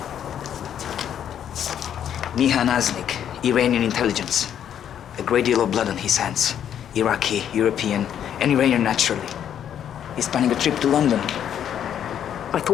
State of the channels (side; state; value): right; quieter; 9.5 dB